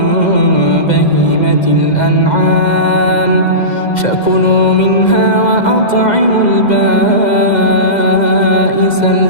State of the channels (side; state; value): right; late; 2.0 ms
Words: بهيمة الأنعام فكلوا منها وأطعموا البائس